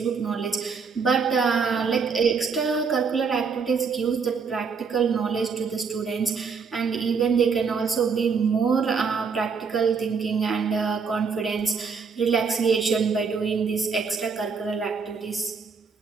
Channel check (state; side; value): quieter; left; 5.5 dB